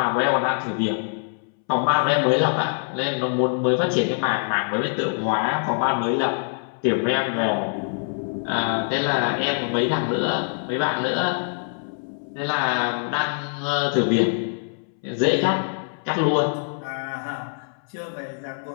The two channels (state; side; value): silent; right; 63 dB below the other